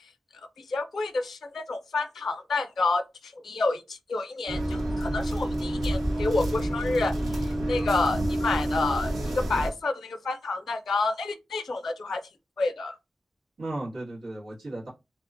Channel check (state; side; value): normal; both; correlation 0.90